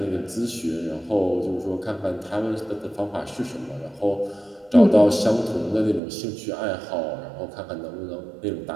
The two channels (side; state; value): left; drops out; at 6.0 s